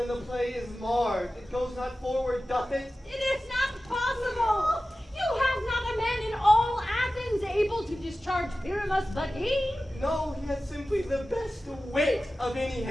the play is marred. It goes not forward, doth it? It is not possible. You have not a man in all Athens able to discharge Pyramus but he. No, he has simply the best wit of any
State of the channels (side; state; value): both; normal; correlation 0.95